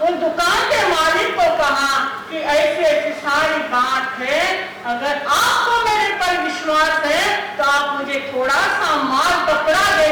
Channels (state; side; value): identical; both; correlation 1.00